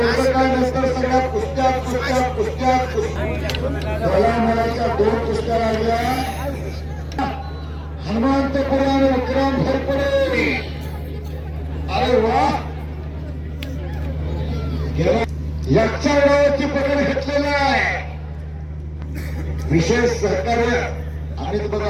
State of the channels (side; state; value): both; identical; correlation 1.00